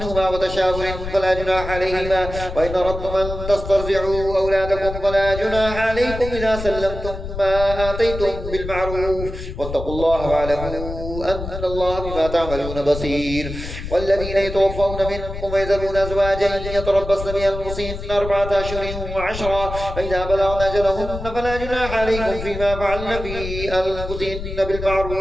وتشاور فلا جناح عليهما. وإن أردتم أن تسترضعوا أولادكم فلا جناح عليكم إذا سلمتم ما آتيتم بالمعروف، واتقوا الله واعلموا أن الله بما تعملون بصير. والذين يتوفون منكم ويذرون أزواجا يتربصن بأنفسهن 4 أشهر وعشرا، فإذا بلغن أجلهن فلا جناح عليكم فيما فعلن في أنفسهن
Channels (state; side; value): noise; left; rumble, 8 dB below the sound